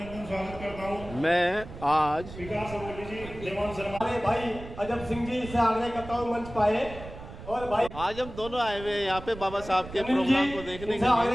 मैं आज भाई अजब सिंह जी से आग्रह करता हूं मंच पाए। और भाई आज हम दोनों आए हुए हैं यहाँ पे बाबा साहब के प्रोग्राम को देखने के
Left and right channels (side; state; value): right; noise; rumble, 13 dB below the sound